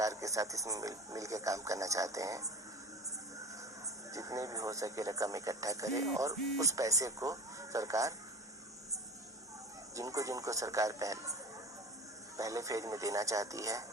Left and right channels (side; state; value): both; normal; correlation 0.34